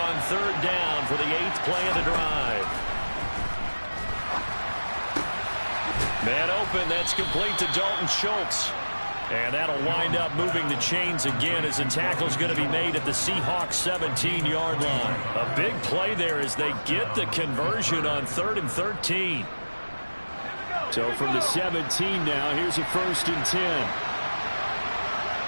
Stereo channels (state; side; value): inverted; both; correlation -1.00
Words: third down for the 8th play of the drive. Man open, that's complete to Dalton Schultz. And that'll wind up moving the chains again as the tackle's going to be made at the Seahawks 17-yard line. A big play there as they get the conversion on 3rd and 13. So from the 17 now, here's a 1st and 10.